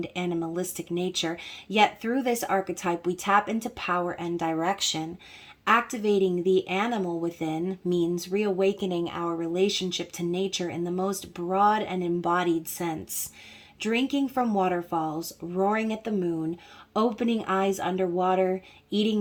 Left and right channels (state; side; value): identical; both; correlation 1.00